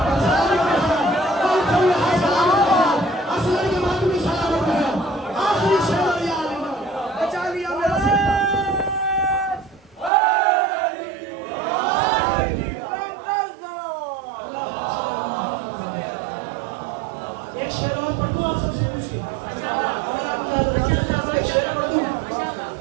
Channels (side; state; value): left; drops out; at 10.1 s